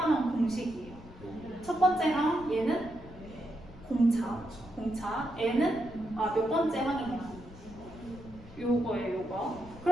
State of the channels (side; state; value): left; noise; rumble, 18 dB below the sound